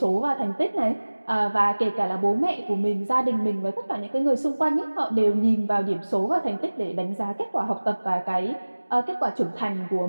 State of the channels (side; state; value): both; inverted; correlation -1.00